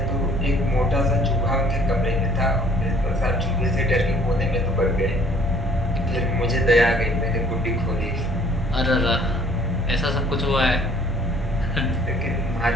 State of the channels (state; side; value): normal; both; correlation 0.57